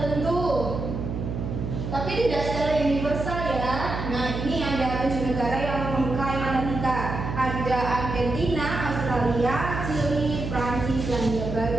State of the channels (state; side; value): noise; right; hum, 5 dB below the sound